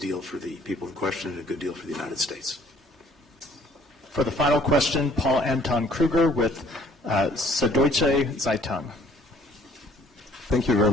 for the people in question and a good deal for the United States. For the final question, Paul Anton Kruger with Süddeutsche Zeitung. Thank you very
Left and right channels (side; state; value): both; normal; correlation 0.58